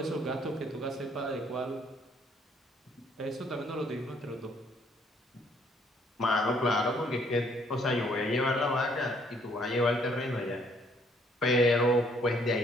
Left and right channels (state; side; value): normal; both; correlation 0.64